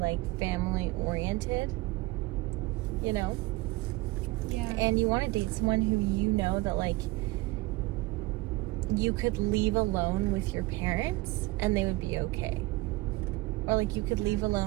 family oriented, you know? Yeah. And you want to date someone who you know that like you could leave alone with your parents and they would be okay. Or like you could leave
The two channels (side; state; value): left; quieter; 20.5 dB